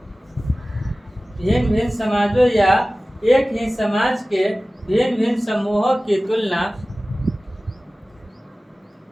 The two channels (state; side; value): normal; both; correlation 0.97